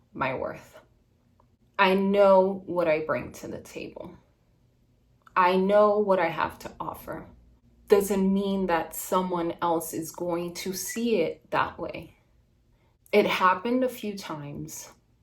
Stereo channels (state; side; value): identical; both; correlation 1.00